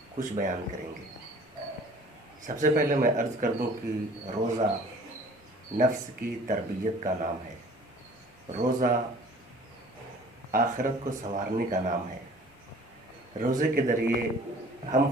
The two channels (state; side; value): normal; both; correlation 0.50